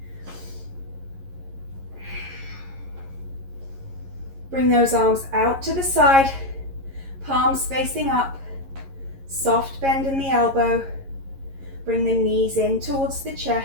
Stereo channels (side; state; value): left; late; 11 ms